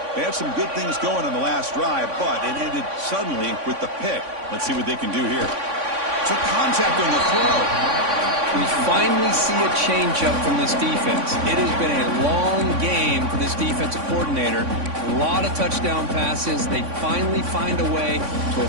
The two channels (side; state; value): left; late; 3.5 ms